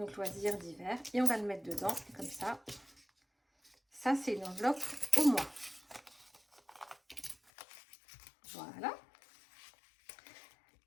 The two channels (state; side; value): drops out; right; at 7.4 s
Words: loisirs d'hiver. Et on va le mettre dedans, comme ça. Ça, c'est une enveloppe au mois. Voilà.